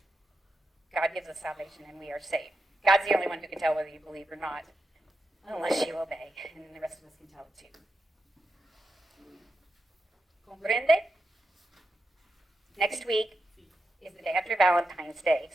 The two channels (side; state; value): both; normal; correlation 0.87